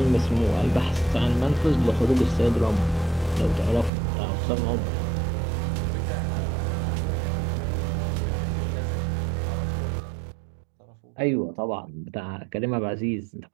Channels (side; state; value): left; drops out; at 3.9 s